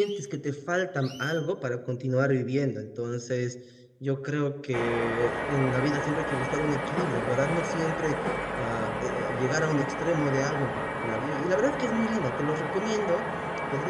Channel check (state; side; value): identical; both; correlation 1.00